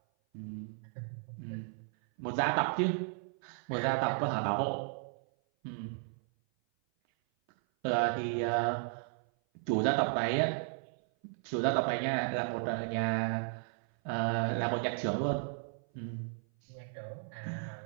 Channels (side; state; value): left; silent; 55 dB below the other